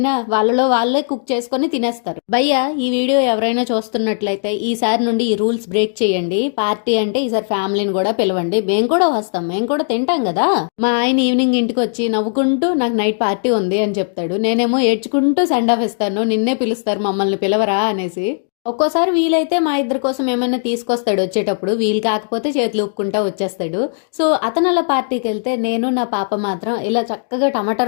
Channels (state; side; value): silent; right; digital silence